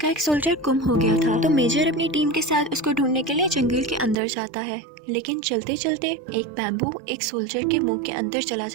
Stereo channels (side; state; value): left; drops out; at 4.2 s